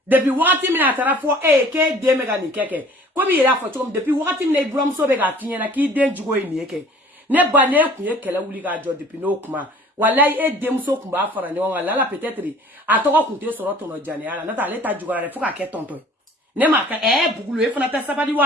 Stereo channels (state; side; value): normal; both; correlation 0.50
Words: depuis wakati mina tara fo ke de mega ni keke ko bi ira fo chom depuis wakati mina ibram so be ga finya na ki de jugo ni eke ne ba ne kun ye kele wuli ga jo depuis no kuma wallahi dem so kumba fara ne wala la peut-être atoko kunte soro tono jane ala na ta leta jugora le fuka ke tonto ne ma ka bugulu e fana ta sabadi